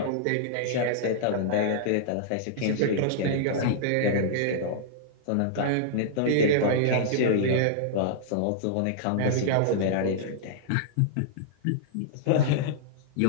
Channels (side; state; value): both; different; correlation -0.01